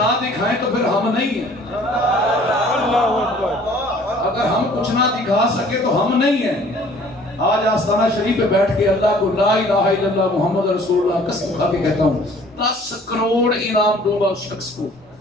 دکھائیں تو پھر ہم نہیں ہیں. اگر ہم کچھ نہ دکھا سکے تو ہم نہیں ہیں. آج آستانہ شریف پہ بیٹھ کے اللہ کو لا الہ الا اللہ محمد رسول اللہ قسم کھا کے کہتا ہوں 10 کروڑ انعام دوں گا اس شخص کو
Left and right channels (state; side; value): normal; both; correlation 0.54